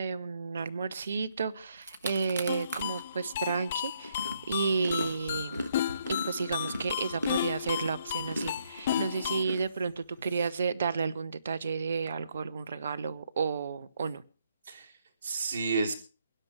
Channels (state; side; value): inverted; both; correlation -0.72